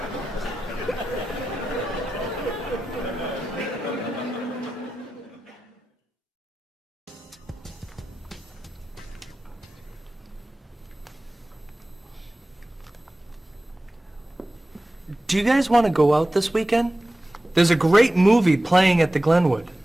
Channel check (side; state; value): both; normal; correlation 0.94